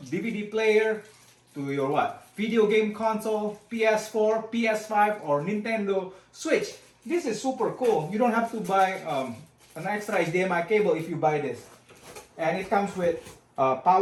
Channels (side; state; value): both; identical; correlation 1.00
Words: DVD player, to your what? Video game console, PS4, PS5, or Nintendo Switch. This is super cool. You don't have to buy an extra HDMI cable if you buy this. And it comes with a